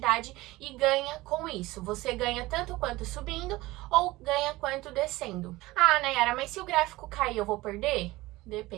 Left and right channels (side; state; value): left; quieter; 19.4 dB